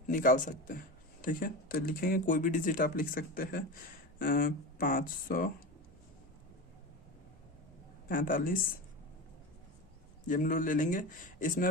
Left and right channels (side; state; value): both; normal; correlation 0.25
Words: निकाल सकते हैं। ठीक है, तो लिखेंगे कोई भी डिजिट आप लिख सकते हैं। 45 ये हम लोग ले लेंगे। इसमें